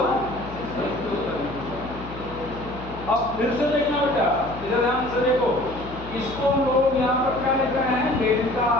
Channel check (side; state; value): left; noise; hum, 14 dB below the sound